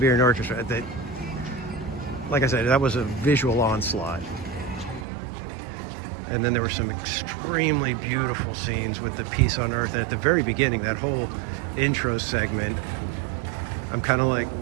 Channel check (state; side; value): drops out; left; at 5.1 s